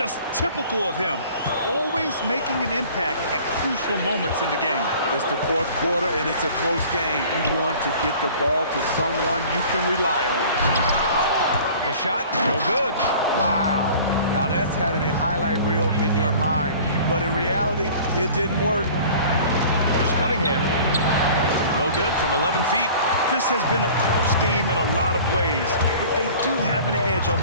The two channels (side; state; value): both; inverted; correlation -0.46